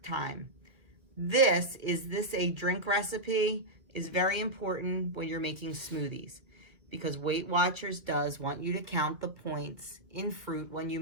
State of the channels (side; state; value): left; late; 1.9 ms